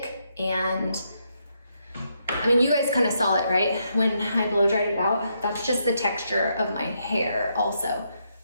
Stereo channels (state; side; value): inverted; both; correlation -0.78